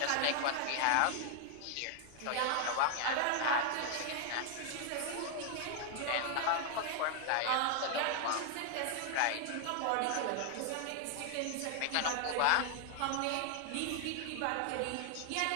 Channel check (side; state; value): both; different; correlation 0.00